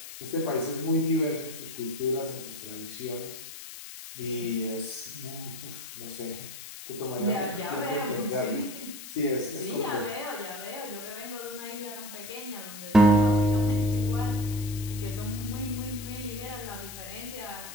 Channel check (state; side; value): noise; left; hiss, 12 dB below the sound